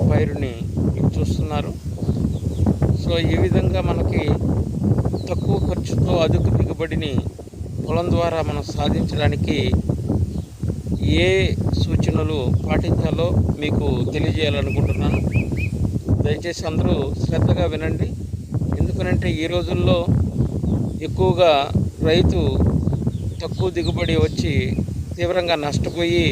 పైరుని చూస్తున్నారు. సో ఈ విధంగా మనకి తక్కువ ఖర్చుతో అధిక దిగుబడిని పొలం ద్వారా మనం సాధించడానికి ఏ సూచనలు పాటించాలో మీకు తెలియజేయాలనుకుంటున్నాను. దయచేసి అందరూ శ్రద్ధగా వినండి. ఎందుకనంటే ఈ రోజుల్లో ఎక్కువగా రైతు తక్కువ దిగుబడి వచ్చి తీవ్రంగా నష్టపోయి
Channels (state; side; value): identical; both; correlation 1.00